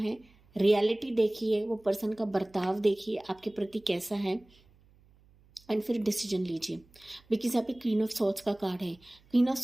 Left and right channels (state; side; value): noise; right; hum, 30 dB below the sound